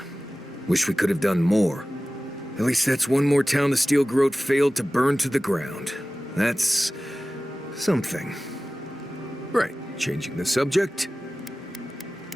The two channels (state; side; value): normal; both; correlation 0.97